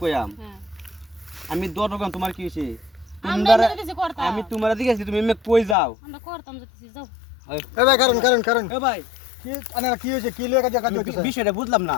কইয়াম আমি 10 রকম তোমার কি হইছে আমি তোমার দিকেছি তুমি এমনি কই যাও আমরা করতাম যাইতেছি যাও এ ভাই কারণ এ ভাই কি আনার কি হইছে কি লইয়া কাজ হইছে বিষয়টা বুঝলাম না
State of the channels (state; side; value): drops out; right; at 5.8 s